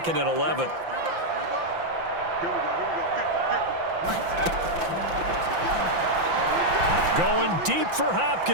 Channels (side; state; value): left; late; 5.9 ms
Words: and 11. Going deep for